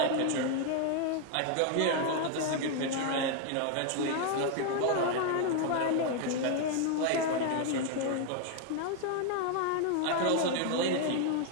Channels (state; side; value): different; both; correlation 0.00